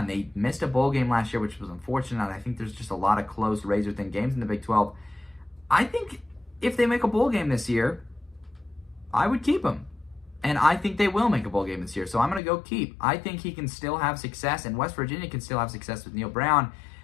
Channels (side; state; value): right; drops out; at 12.4 s